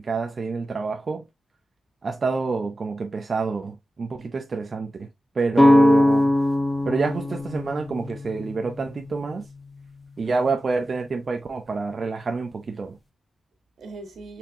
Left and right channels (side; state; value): both; normal; correlation 0.94